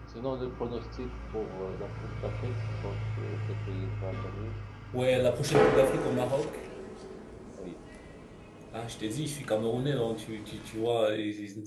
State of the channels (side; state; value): both; identical; correlation 1.00